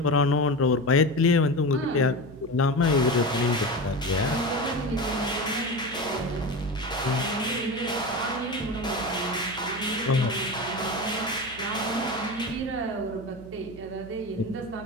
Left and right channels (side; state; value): right; noise; hum, 18 dB below the sound